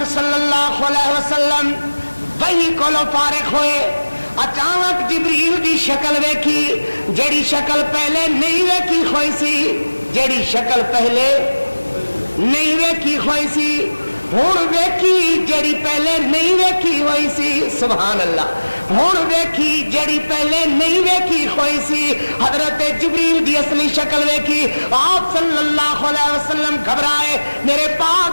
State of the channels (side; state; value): both; inverted; correlation -1.00